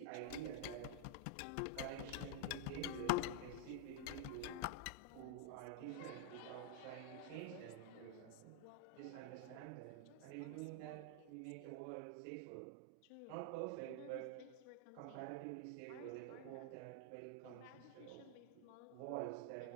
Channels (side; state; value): both; different; correlation 0.00